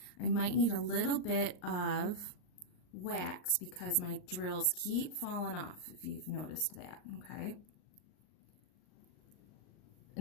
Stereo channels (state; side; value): late; right; 39 ms